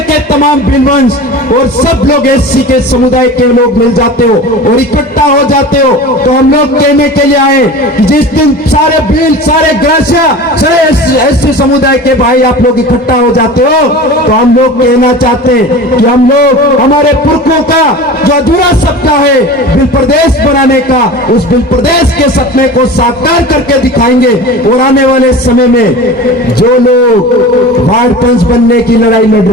के तमाम भिलवंश और सब लोग एससी के समुदाय के लोग मिल जाते हो और इकट्ठा हो जाते हो, तो हम लोग कहने के लिए आए कि जिस दिन सारे भील, सारे ग्रासिया, सारे एससी समुदाय के भाई आप लोग इकट्ठा हो जाते हो, तो हम लोग कहना चाहते हैं कि हम लोग हमारे पुरखों का जो अधूरा सपना है बिल प्रदेश बनाने का, उस बिल प्रदेश के सपने को साकार करके दिखाएंगे और आने वाले समय में जो लोग वार्ड पंच बनने की लड़ाई लड़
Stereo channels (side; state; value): both; normal; correlation 0.35